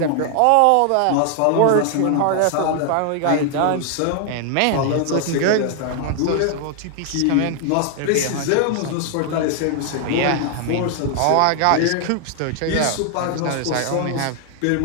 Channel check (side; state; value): both; different; correlation 0.00